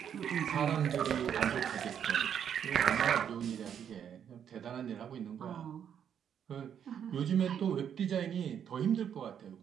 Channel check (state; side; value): quieter; left; 8.6 dB